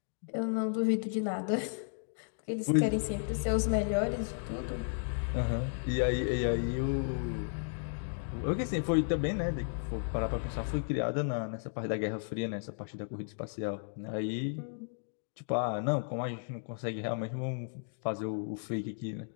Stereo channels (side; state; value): right; silent; digital silence